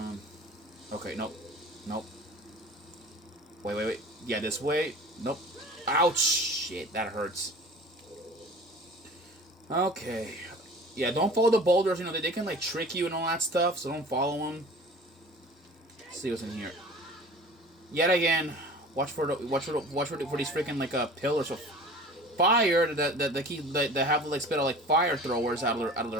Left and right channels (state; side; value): normal; both; correlation 0.41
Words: Okay, nope. Nope. Wait. Yeah, this way. Nope. Ouch! Shit, that hurts. Okay. Yeah, don't follow the boulders. You know, they can, like, trick you and all that stuff, so don't follow them. Let's see what's in here. Yet again, watch for these freaking, like, pillars of fire that have, like, spit out, like, fire throwers out of